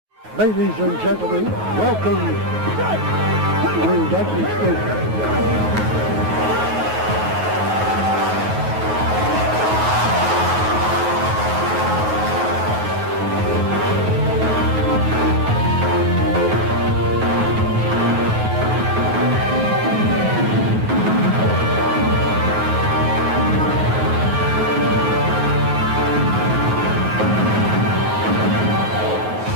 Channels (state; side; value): late; left; 9.4 ms